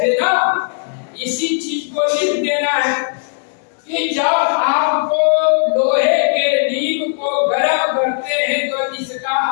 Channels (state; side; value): silent; right; digital silence